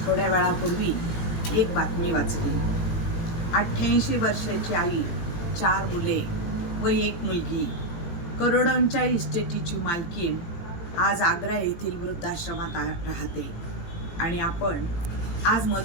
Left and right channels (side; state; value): right; late; 18 ms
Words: थोड्या वेळापूर्वी एक बातमी वाचली. 88 वर्षाची आई, 4 मुले व 1 मुलगी, करोडोंच्या इस्टेटीची मालकीण आज आग्रा येथील वृद्धाश्रमात राहते आणि आपण आज